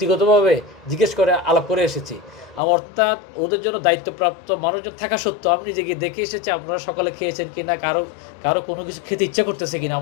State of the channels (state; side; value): drops out; right; at 2.6 s